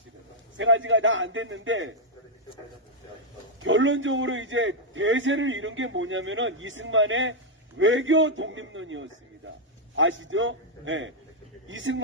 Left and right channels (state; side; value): normal; both; correlation -0.04